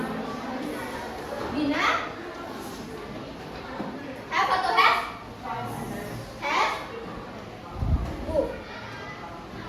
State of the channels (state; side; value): identical; both; correlation 1.00